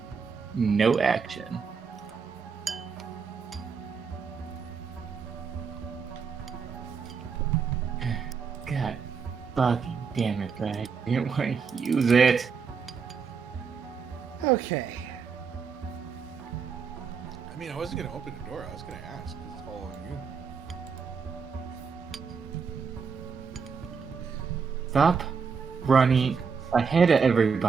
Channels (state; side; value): quieter; left; 5.8 dB